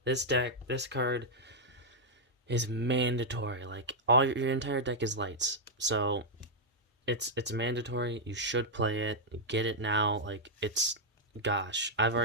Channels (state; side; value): normal; both; correlation -0.04